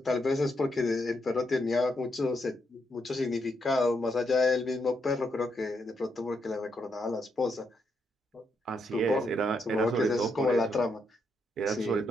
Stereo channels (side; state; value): both; normal; correlation 0.79